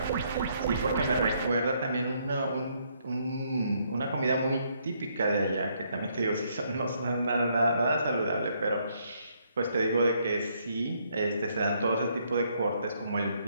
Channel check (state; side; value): inverted; both; correlation -0.71